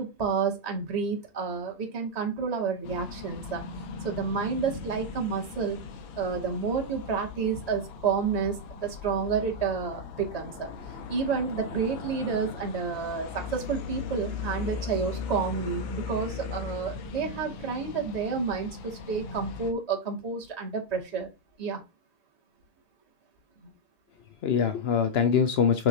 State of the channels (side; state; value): right; late; 1.8 ms